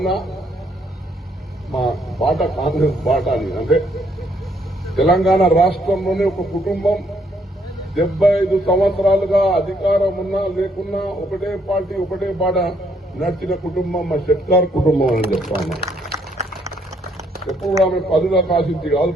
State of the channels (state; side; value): normal; both; correlation 0.70